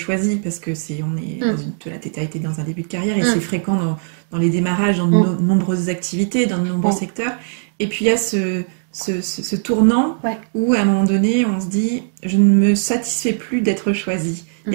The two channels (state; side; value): silent; left; 63 dB below the other